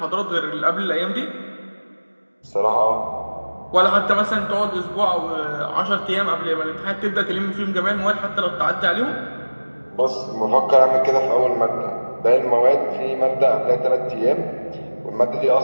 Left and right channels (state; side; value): inverted; both; correlation -1.00